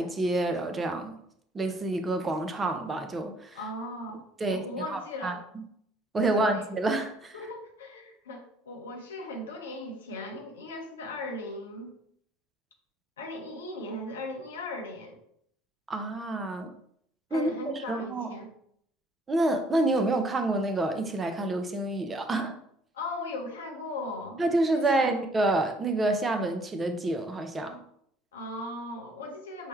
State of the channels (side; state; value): both; normal; correlation 0.61